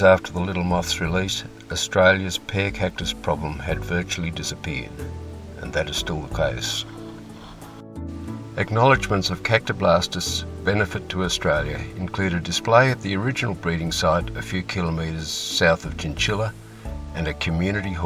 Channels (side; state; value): both; identical; correlation 1.00